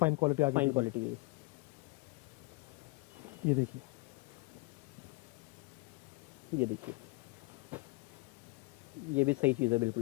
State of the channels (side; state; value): right; quieter; 24.9 dB